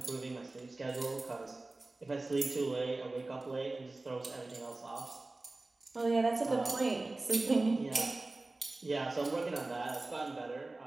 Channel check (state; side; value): quieter; left; 3.1 dB